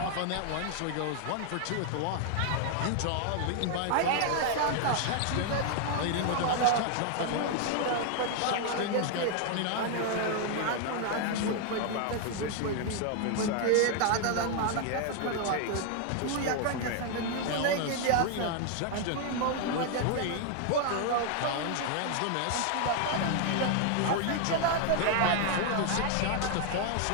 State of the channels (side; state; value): both; different; correlation 0.00